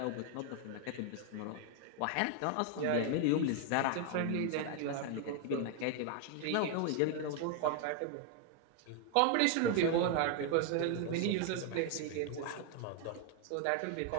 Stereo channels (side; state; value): both; different; correlation 0.00